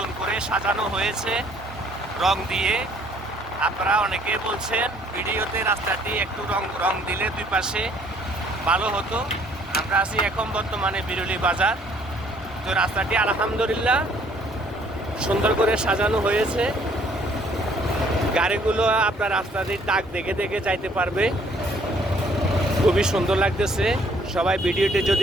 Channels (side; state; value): both; normal; correlation 0.61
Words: করে সাজানো হয়েছে রং দিয়ে। আপনারা অনেকে বলছেন ভিডিওতে রাস্তাটি একটু রং দিলে দুই পাশে ভালো হতো। আমরা আছি এখন বর্তমানে বিরুলি বাজার। তো রাস্তাটি আলহামদুলিল্লাহ সুন্দর করে সাজানো হয়েছে। গাড়িগুলো আপনার রাস্তাটির দাগ দেখে দেখে যাইতে পারবে। খুবই সুন্দর লাগতেছে। সবাই ভিডিওটি